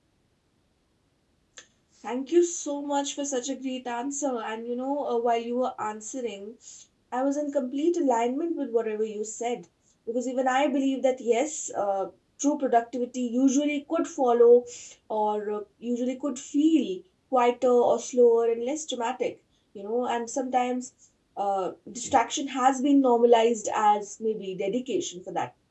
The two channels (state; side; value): identical; both; correlation 1.00